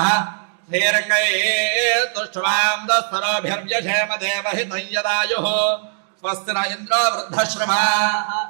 శ్రీరంగైస్తుష్ట్వాం దస్సరోభిర్వ్యశేమ దేవహితం యదాయుః. స్వస్తి న ఇంద్రో వృద్ధశ్రవాः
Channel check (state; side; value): silent; left; digital silence